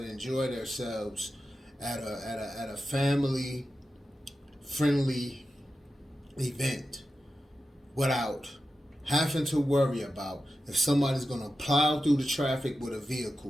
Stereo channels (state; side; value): normal; both; correlation 0.91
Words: enjoy themselves at a family friendly event without having to worry about if somebody's going to plow through the traffic with a